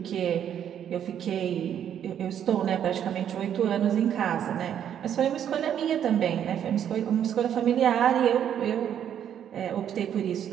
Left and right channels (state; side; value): quieter; left; 9.5 dB